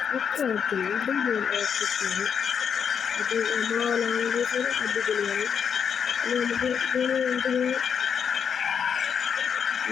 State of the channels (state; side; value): quieter; right; 7.3 dB